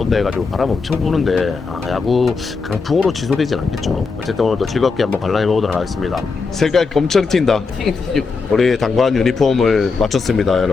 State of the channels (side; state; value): right; quieter; 4.6 dB